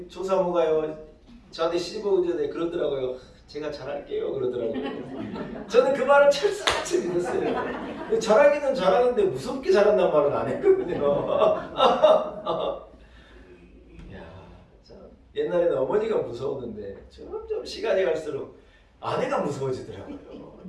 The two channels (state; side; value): identical; both; correlation 1.00